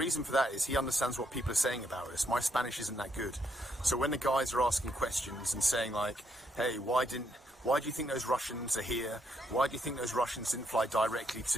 for that is he understands what people are saying about us. My Spanish isn't that good. So when the guys are asking questions and saying like, hey, why do you think those Russians are here? Why do you think those Russians didn't fly directly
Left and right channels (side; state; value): both; normal; correlation 0.75